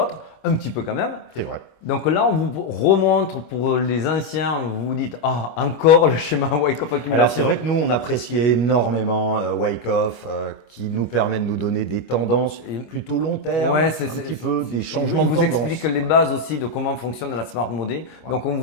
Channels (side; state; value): right; late; 25 ms